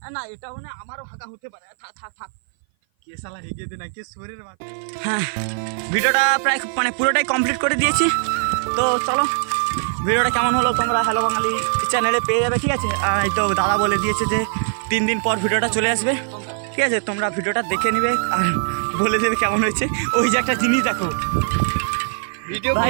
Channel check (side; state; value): left; silent; 57 dB below the other